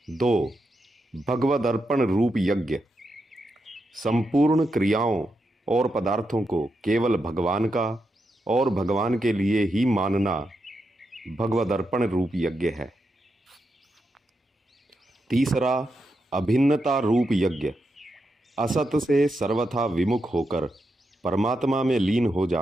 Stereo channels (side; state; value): both; normal; correlation 0.85